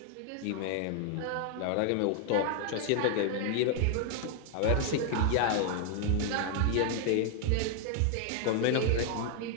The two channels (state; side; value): different; both; correlation 0.00